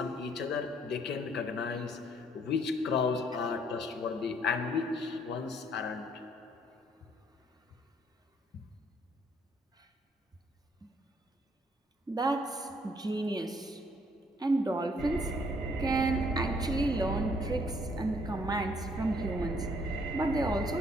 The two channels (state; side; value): normal; both; correlation 0.65